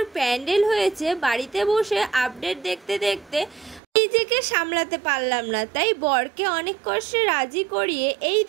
প্যান্ডেল হয়েছে, বাড়িতে বসে আপডেট দেখতে দেখতে নিজেকে সামলাতে পারলাম না। তাই বরকে অনেক কষ্টে রাজি করিয়ে এই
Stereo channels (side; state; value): left; drops out; at 3.8 s